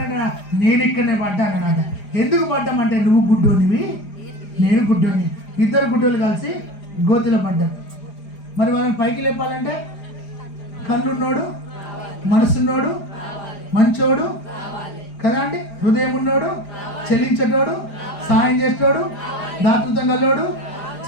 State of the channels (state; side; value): late; right; 4.9 ms